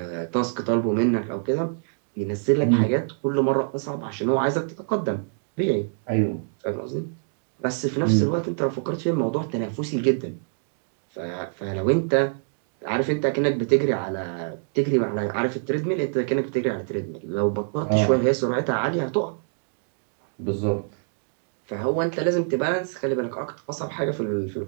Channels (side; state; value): left; silent; digital silence